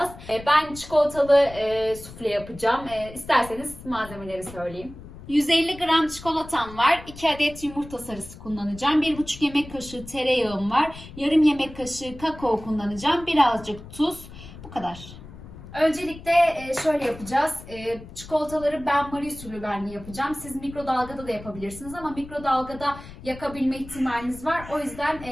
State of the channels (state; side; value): noise; left; rumble, 16 dB below the sound